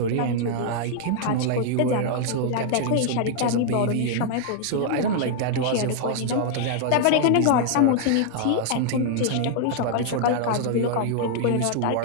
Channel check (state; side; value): different; both; correlation 0.00